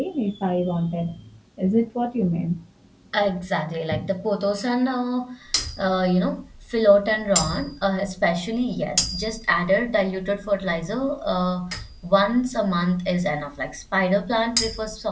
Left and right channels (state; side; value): identical; both; correlation 1.00